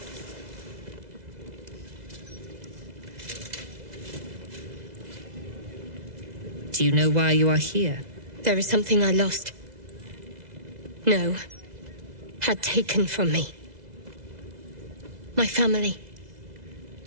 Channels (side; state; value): left; late; 2.0 ms